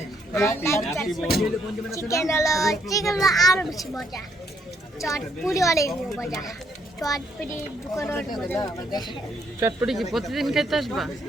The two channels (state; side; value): normal; both; correlation 0.71